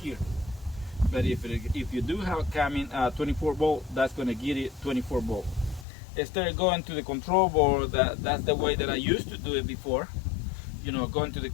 here. But if you do have coming 24 volt, that's going to get it 24 volt. Instead of going to the control board, that's the way that I used to do it before. You know, going to the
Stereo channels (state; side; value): drops out; right; at 5.9 s